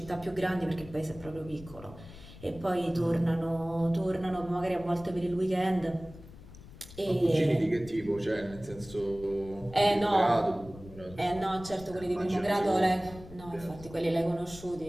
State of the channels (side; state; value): left; noise; rumble, 17 dB below the sound